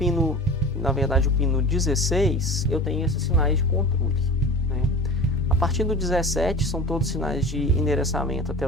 na verdade o pino 16, eu tenho esses sinais de controle, né? A partir do 17 são todos sinais de endereçamento até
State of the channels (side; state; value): both; normal; correlation 0.36